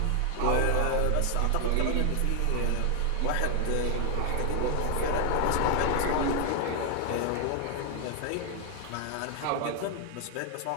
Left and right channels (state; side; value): different; both; correlation 0.00